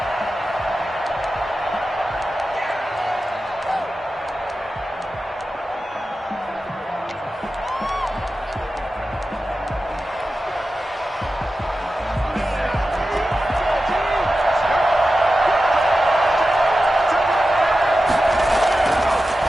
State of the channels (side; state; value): both; normal; correlation 0.93